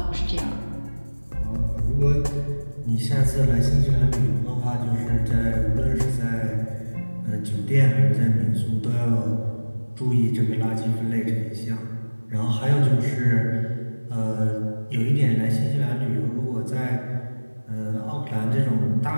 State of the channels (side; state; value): both; inverted; correlation -1.00